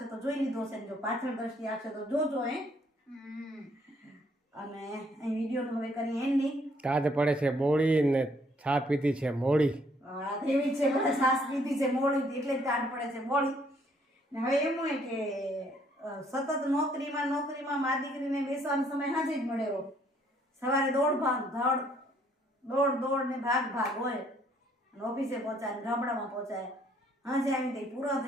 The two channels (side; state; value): both; normal; correlation 0.66